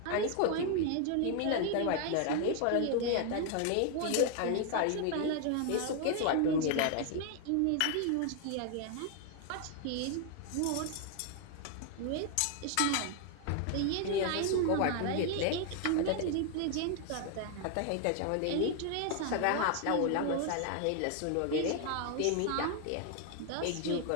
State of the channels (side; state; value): both; different; correlation 0.00